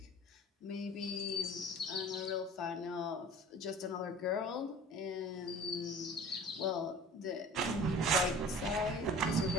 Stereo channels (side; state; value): both; normal; correlation 0.43